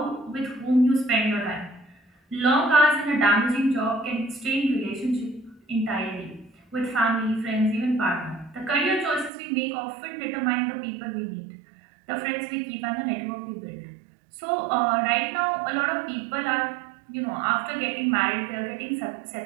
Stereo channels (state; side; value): drops out; left; at 9.3 s